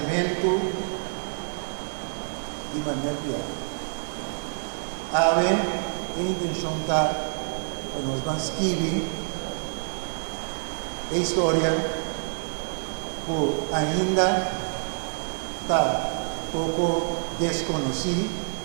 de Manuel Piar. A ver, a intenção está para nós vamos escrever a história que ainda está pouco desconhecida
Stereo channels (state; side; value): silent; left; digital silence